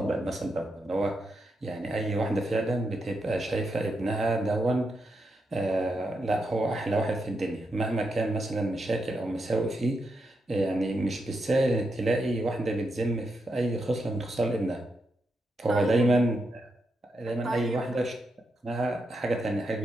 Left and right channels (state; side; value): normal; both; correlation 0.84